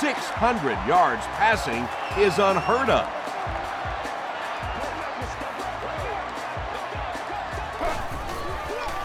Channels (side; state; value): both; identical; correlation 1.00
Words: 600 yards passing is unheard of.